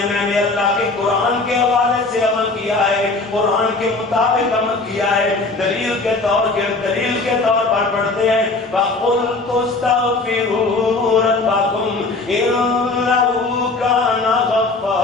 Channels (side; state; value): right; quieter; 3.4 dB